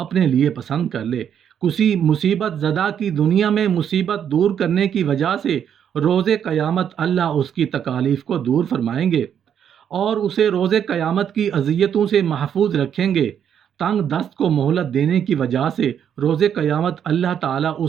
لیے پسند کر لے۔ کسی مصیبت زدہ کی دنیا میں مصیبت دور کرنے کی وجہ سے روز قیامت اللہ اس کی تکالیف کو دور فرمائیں گے اور اسے روز قیامت کی اذیتوں سے محفوظ رکھیں گے۔ تنگ دست کو مہلت دینے کی وجہ سے روز قیامت اللہ تعالیٰ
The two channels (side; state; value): left; quieter; 8.7 dB